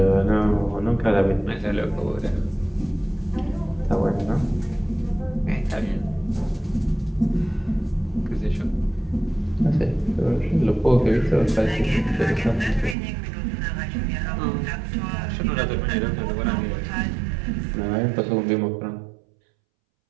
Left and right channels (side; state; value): left; drops out; at 13.0 s